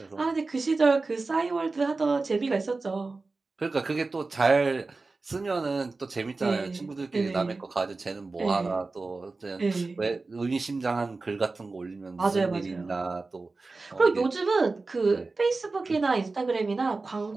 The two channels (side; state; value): left; quieter; 3.7 dB